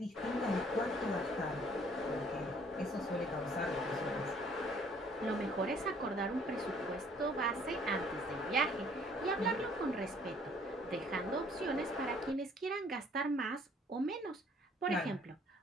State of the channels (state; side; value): normal; both; correlation 0.59